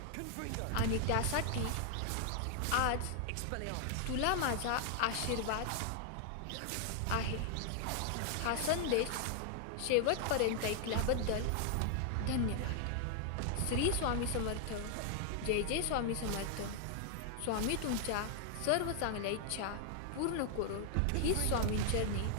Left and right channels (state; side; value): different; both; correlation 0.00